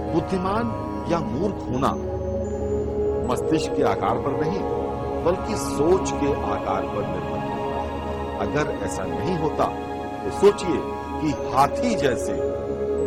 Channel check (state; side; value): identical; both; correlation 1.00